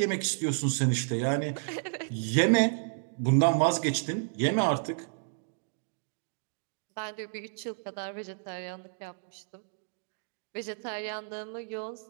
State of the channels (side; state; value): left; silent; digital silence